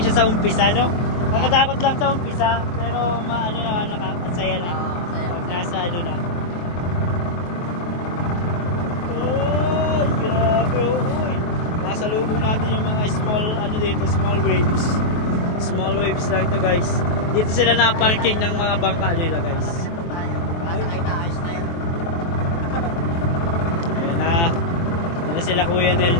sa umpisa, no? Nakakatakot lang sa umpisa, pero nakakasaya na. Pag nasa na. Salubong natin yung mga small waves. Small waves lang ito, guys. Dito sila na-parking ng mga bangka nila, guys. Masakay na, ayos na yun. Kuya Nel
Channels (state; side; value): late; right; 23 ms